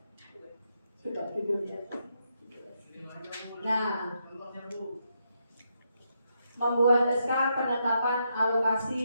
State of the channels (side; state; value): both; inverted; correlation -0.80